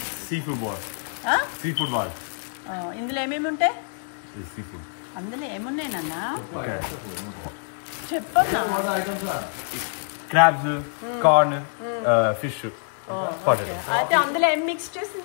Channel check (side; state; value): right; silent; 60 dB below the other